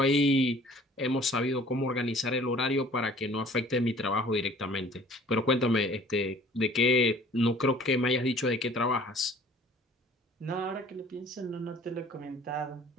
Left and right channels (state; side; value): normal; both; correlation 0.51